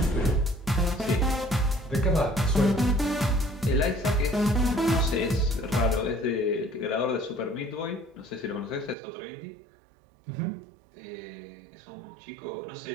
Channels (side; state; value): left; drops out; at 9.0 s